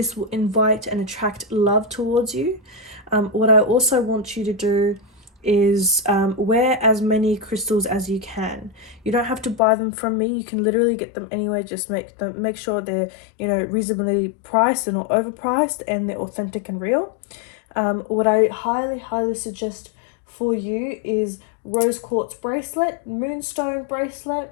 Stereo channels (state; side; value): drops out; right; at 9.6 s